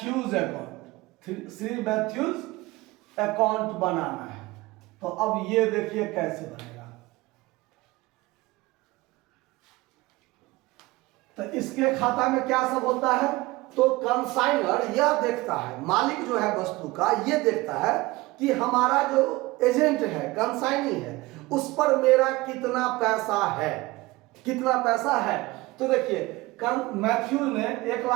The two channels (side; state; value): left; quieter; 20.6 dB